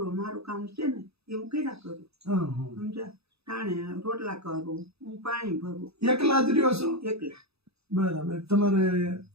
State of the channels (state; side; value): late; left; 0.78 ms